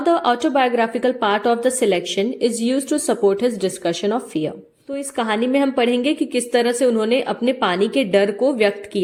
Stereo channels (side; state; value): both; identical; correlation 1.00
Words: the autobiographical part of the selection is used to support his discussion of fear. तो इस कहानी में हम पढ़ेंगे कि किस तरह से उन्होंने अपने पानी के डर को व्यक्त